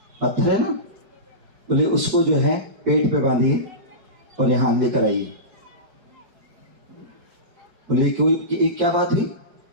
पत्थर है ना, बोले उसको जो है पेट पे बांधिए और यहाँ लेकर आइए। बोले कोई क्या बात हुई,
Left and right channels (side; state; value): left; late; 4.7 ms